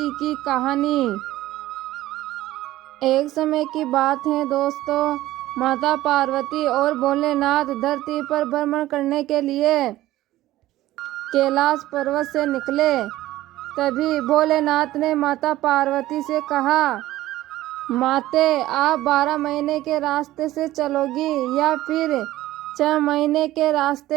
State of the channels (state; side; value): quieter; left; 15.6 dB